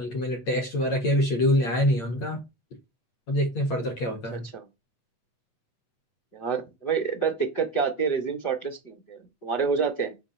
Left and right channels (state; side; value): late; right; 8.8 ms